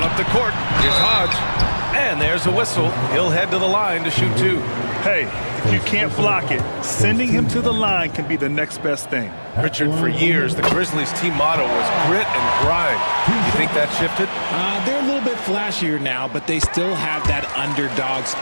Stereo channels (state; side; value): inverted; both; correlation -1.00